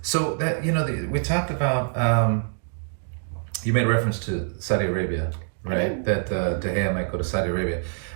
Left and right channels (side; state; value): left; silent; digital silence